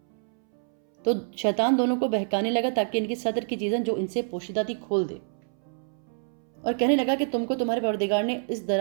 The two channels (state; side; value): silent; left; 60 dB below the other